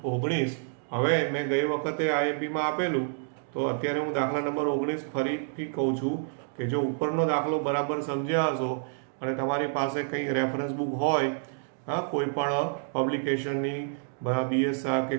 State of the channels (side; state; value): left; silent; digital silence